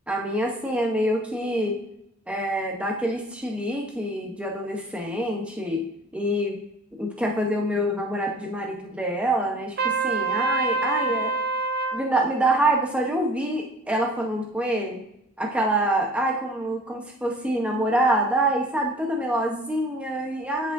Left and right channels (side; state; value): both; normal; correlation 0.47